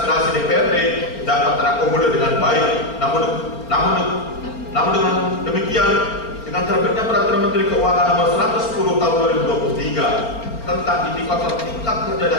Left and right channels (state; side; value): late; right; 4.4 ms